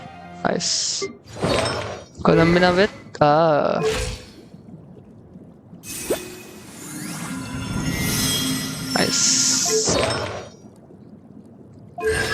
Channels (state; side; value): identical; both; correlation 1.00